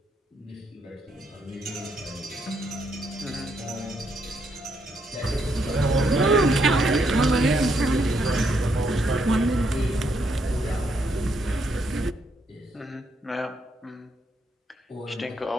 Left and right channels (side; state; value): both; normal; correlation 0.75